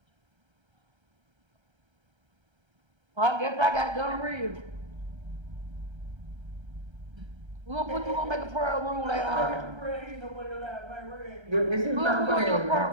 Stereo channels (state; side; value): late; left; 1.3 ms